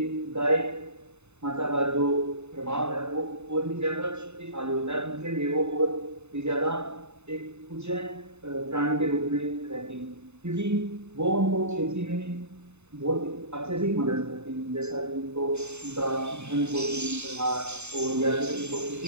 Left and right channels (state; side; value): late; left; 0.82 ms